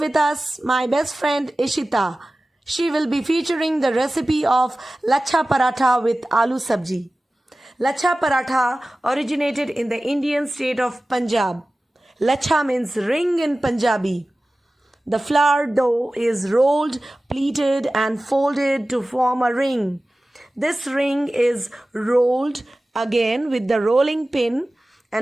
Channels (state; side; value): normal; both; correlation 0.96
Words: us my best friend Ishita. She will be featuring the recipe of Lachha Paratha with Aloo Sabji. Lachha Paratha originated in the Indian state of Punjab. Lachha means ring in Punjabi. The flour dough is rolled, pleated and folded to form a ring. This ring is rolled again with the rolling pin